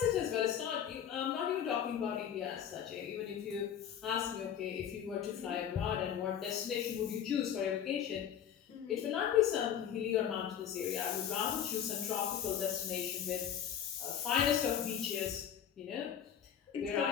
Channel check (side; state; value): right; quieter; 9.1 dB